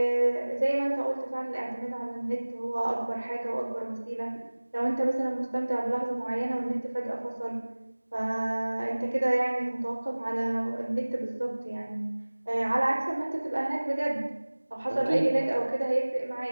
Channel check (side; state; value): both; inverted; correlation -1.00